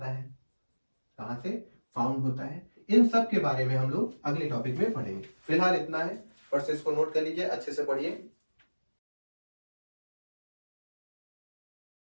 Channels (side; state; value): both; inverted; correlation -1.00